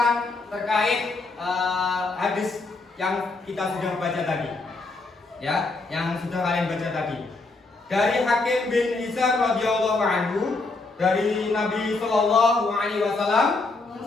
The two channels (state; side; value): quieter; right; 3.5 dB